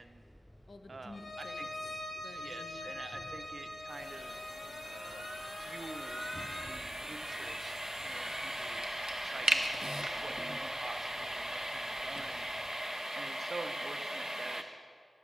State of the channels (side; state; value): both; normal; correlation 0.93